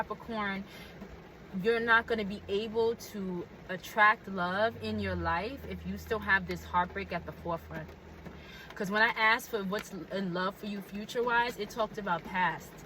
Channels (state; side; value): identical; both; correlation 1.00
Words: you're not going to be able to attract love in your life if you still have this heartbreak at the forefront. Because when I asked for what's in love for you future-wise, it talked about past.